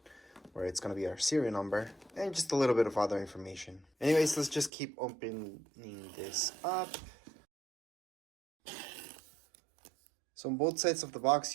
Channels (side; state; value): left; drops out; at 4.7 s